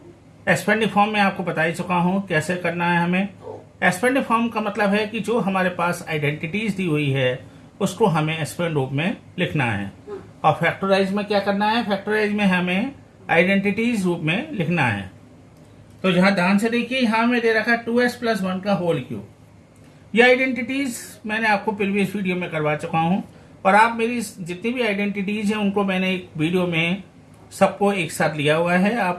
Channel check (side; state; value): both; identical; correlation 1.00